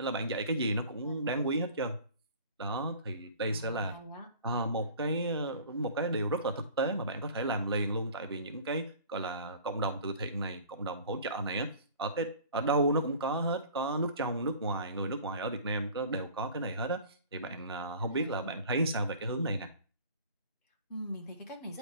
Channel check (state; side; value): inverted; both; correlation -0.45